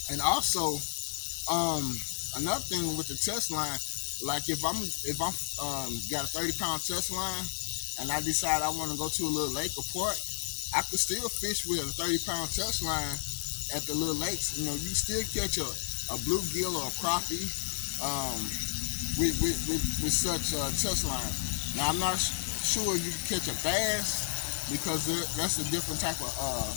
And also, another thing with the test line, like if I'm got a 30-pound test line, and I decide I want to go to a little lake or park, I could still fish with a 30-pound test line at the little lakes. You still catch a bluegill or a crappie with such a test line. Now I'm not sure you can catch a bass, because that's a different type of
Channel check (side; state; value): right; silent; 57 dB below the other